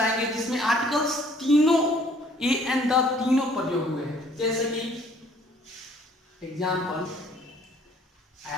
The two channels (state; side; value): normal; both; correlation 0.59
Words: जिसमें आर्टिकल्स तीनों ए एंड द तीनों प्रयोग हुए हैं. जैसे कि example,